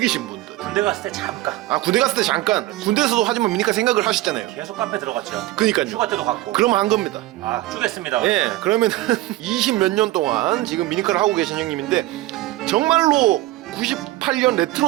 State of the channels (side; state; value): left; quieter; 17.1 dB